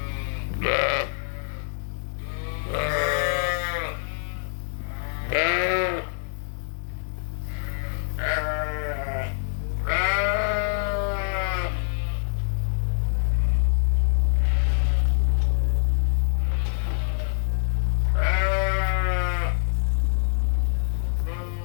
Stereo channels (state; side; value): silent; right; digital silence